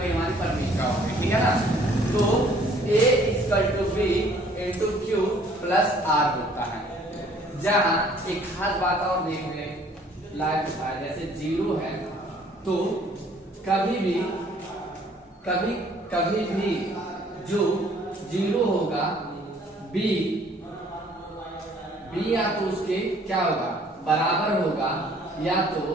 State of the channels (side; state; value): both; normal; correlation 0.58